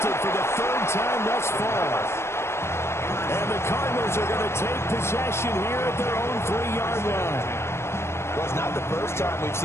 for the 3rd time thus far. And the Cardinals are going to take possession here at their own 3-yard line. Well, it's not the first time we've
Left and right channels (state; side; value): late; right; 0.13 ms